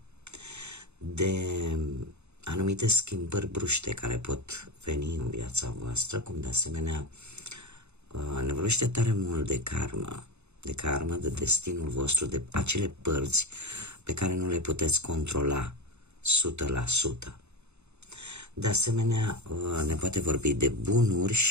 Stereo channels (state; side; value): late; left; 0.81 ms